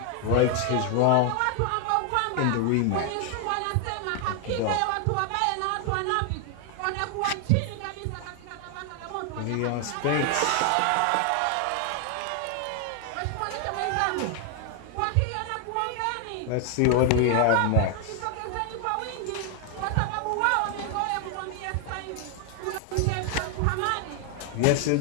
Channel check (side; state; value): both; different; correlation 0.00